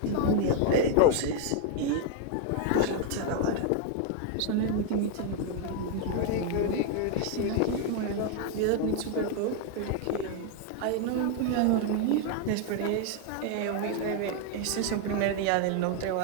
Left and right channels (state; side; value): different; both; correlation 0.01